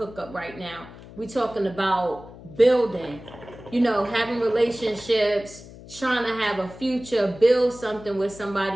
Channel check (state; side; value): noise; left; hum, 17 dB below the sound